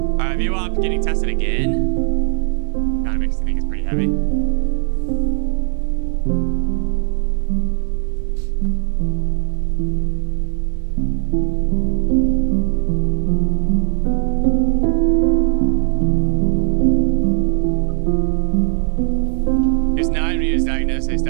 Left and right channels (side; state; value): left; silent; 65 dB below the other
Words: Alright, VWAP getting tested again. Kinda makes me think it's pretty heavy. They